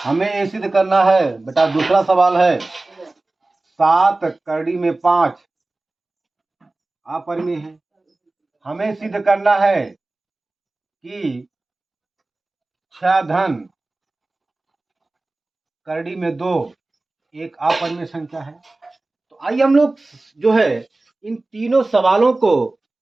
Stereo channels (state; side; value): quieter; left; 3.0 dB